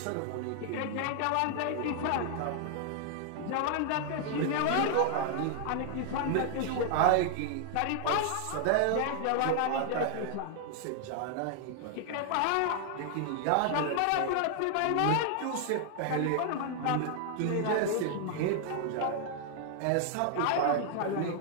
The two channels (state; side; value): different; both; correlation 0.00